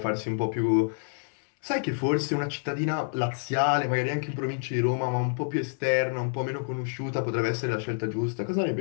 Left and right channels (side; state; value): right; silent; 59 dB below the other